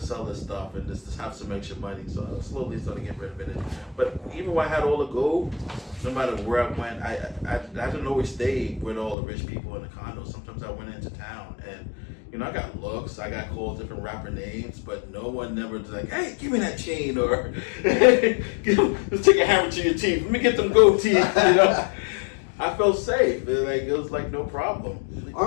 this stuff and just have some extra money. So I slowly started getting rid of it. But even when I had all the gold, no matter where I went, I didn't always stay with all the rich people in the condos. Sometimes I went into town, and you know, I got looks, I got called different rapper names, but no one never was like, hey, give me that chain, or let's take a hammer to your teeth. Let me get them gold teeth. You know, I felt safe. It was like no problem.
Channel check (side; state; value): right; drops out; at 9.2 s